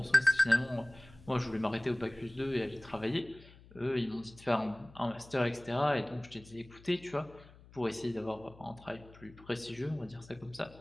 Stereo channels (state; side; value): noise; left; hum, 22 dB below the sound